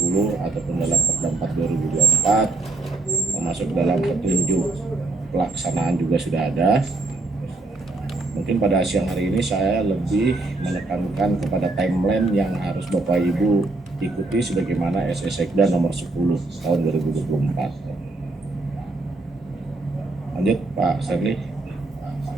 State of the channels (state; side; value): quieter; left; 3.2 dB